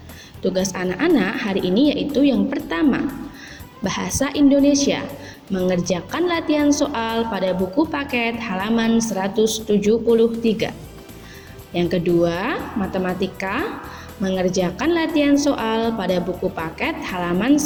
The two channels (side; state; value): both; identical; correlation 1.00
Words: Tugas anak-anak hari ini yaitu yang pertama, Bahasa Indonesia, mengerjakan latihan soal pada buku paket halaman 173. Yang kedua, Matematika, mengerjakan latihan soal pada buku paket halaman